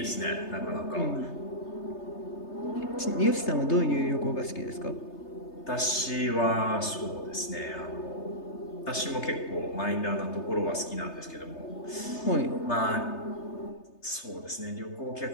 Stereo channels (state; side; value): late; right; 3.3 ms